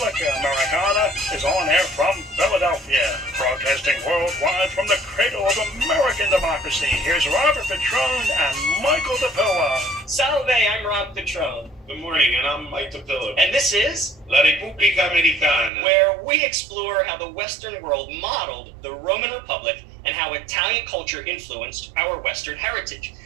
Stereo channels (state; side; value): drops out; left; at 15.7 s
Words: Americana is on air from Philadelphia, broadcasting worldwide from the cradle of American democracy. Here's Robert Petrone and Michael DePilla. Salve, I'm Rob Petrone. Good morning, and I'm Mike DePilla. And this is La Repubblica Americana, where we explore how the Western world modeled the Roman Republic and how Italian culture influenced our Western heritage.